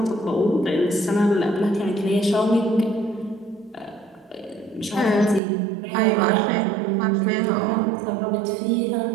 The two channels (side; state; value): left; drops out; at 5.4 s